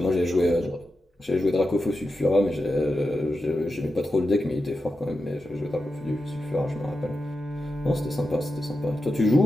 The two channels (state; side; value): normal; both; correlation 0.90